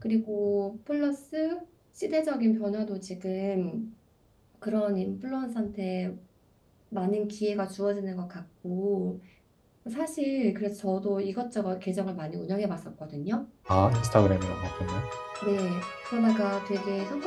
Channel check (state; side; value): identical; both; correlation 1.00